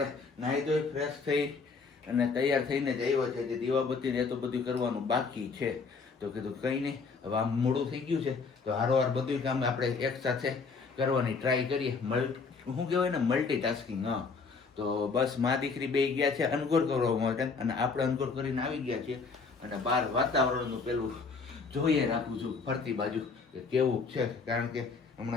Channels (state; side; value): quieter; right; 4.8 dB